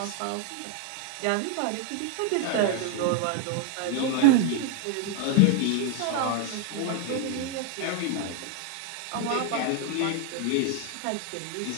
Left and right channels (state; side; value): different; both; correlation 0.00